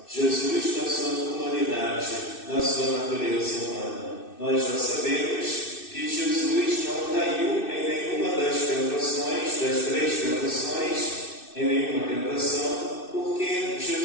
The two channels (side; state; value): right; late; 2.6 ms